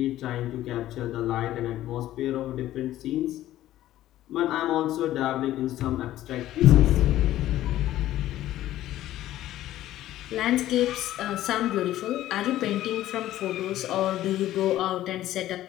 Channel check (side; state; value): right; quieter; 13.9 dB